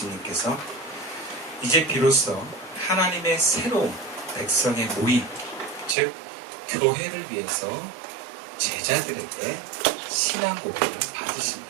이제 비로소 하나님의 새로운 백성의 모임, 즉 교회를 위해서 제자들에게 신앙 고백을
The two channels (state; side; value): drops out; left; at 6.0 s